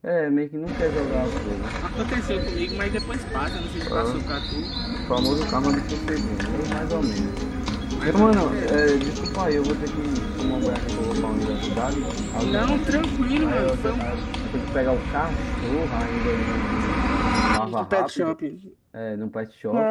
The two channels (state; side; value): identical; both; correlation 1.00